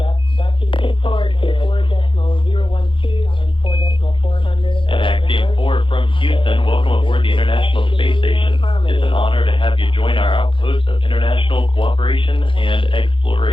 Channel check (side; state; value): right; late; 0.25 ms